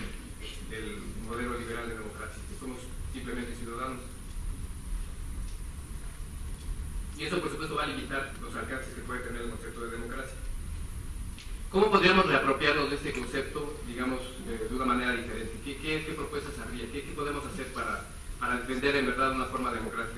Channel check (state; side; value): identical; both; correlation 1.00